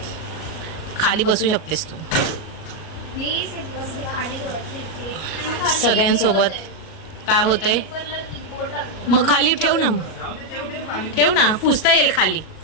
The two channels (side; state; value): right; late; 38 ms